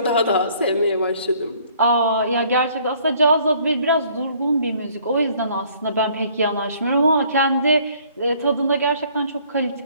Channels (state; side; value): inverted; both; correlation -0.59